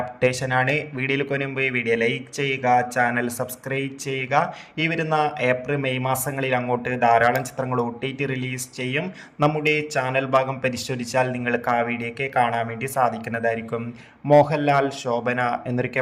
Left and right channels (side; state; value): both; identical; correlation 1.00